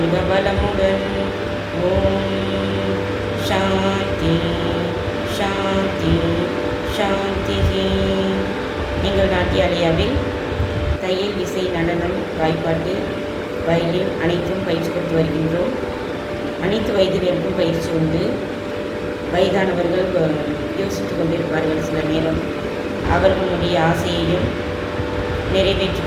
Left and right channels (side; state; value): both; identical; correlation 1.00